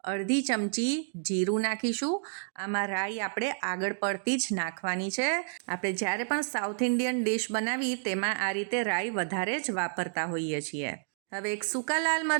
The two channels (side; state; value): left; silent; digital silence